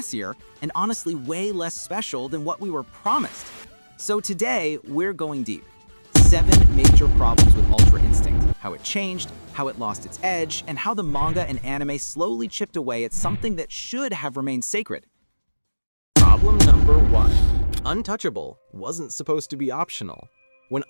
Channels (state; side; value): inverted; both; correlation -1.00